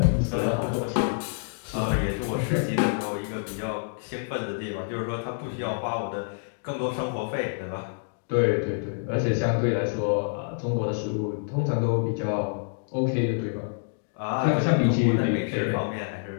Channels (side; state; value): right; silent; digital silence